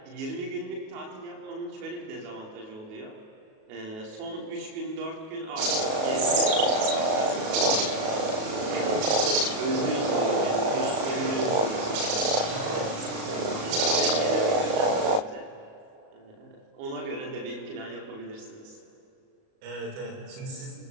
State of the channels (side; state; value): left; late; 37 ms